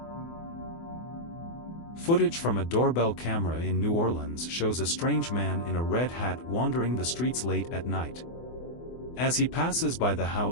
Footage from a doorbell camera in New Orleans shows a strange man in a red hat wandering the streets late at night. As he passes by the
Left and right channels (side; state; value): right; late; 24 ms